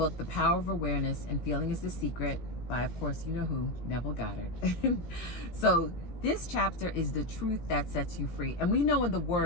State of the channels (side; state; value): right; late; 17 ms